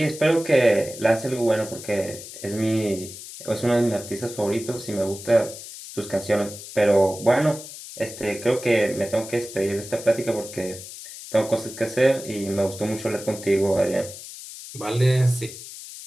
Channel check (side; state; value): left; noise; hiss, 13 dB below the sound